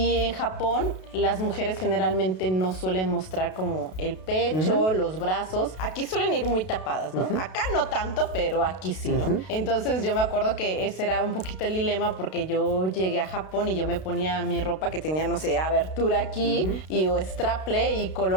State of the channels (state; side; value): late; right; 32 ms